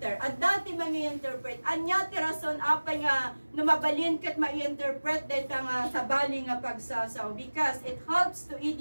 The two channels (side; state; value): both; inverted; correlation -1.00